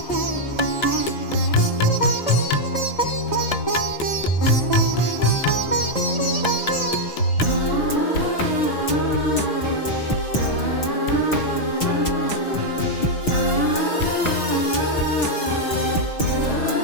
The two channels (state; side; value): late; right; 6.2 ms